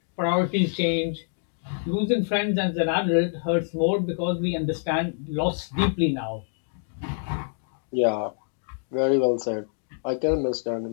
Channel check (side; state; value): right; silent; digital silence